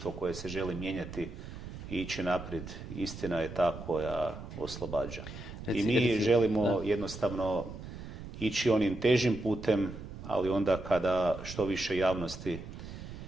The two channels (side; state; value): right; noise; rumble, 11 dB below the sound